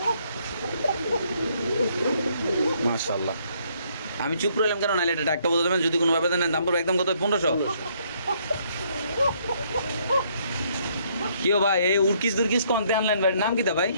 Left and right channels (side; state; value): both; inverted; correlation -0.68